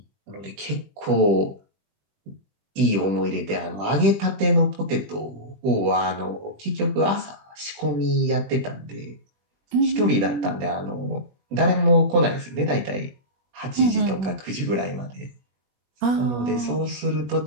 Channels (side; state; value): left; late; 20 ms